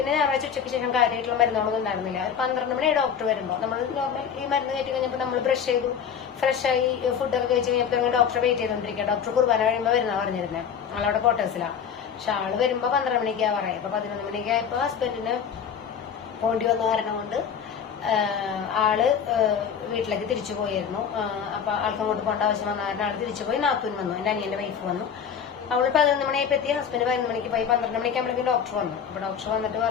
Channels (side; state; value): right; quieter; 7.5 dB